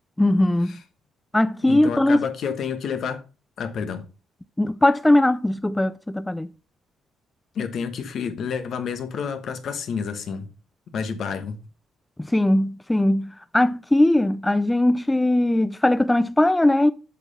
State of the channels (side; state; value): both; normal; correlation 0.97